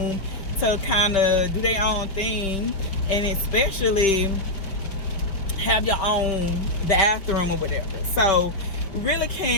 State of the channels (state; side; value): late; right; 5.1 ms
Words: to kind of do their own thing, and especially have your own bathroom or whatever. So we really